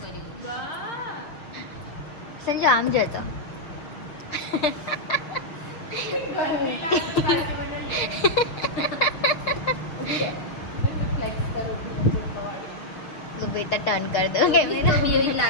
સંજુ આમ જોતો બેટા ટર્ન કર દો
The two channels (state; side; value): late; right; 6.6 ms